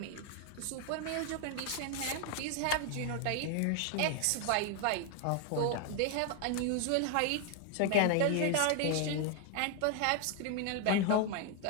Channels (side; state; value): both; different; correlation 0.00